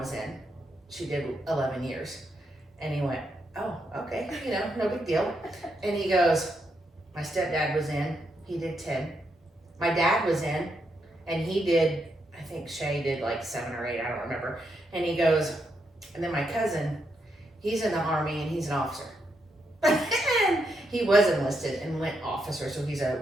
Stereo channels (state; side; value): normal; both; correlation 0.80